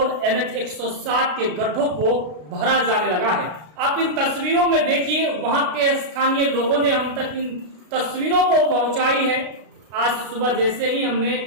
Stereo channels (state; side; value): late; left; 33 ms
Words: NH 107 के गड्ढों को भरा जाने लगा है। आप इन तस्वीरों में देखिए, वहां के स्थानीय लोगों ने हम तक इन तस्वीरों को पहुंचाई है। आज सुबह जैसे ही हमने